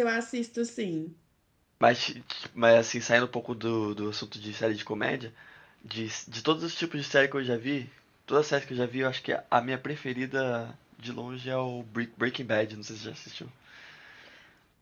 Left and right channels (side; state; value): both; identical; correlation 1.00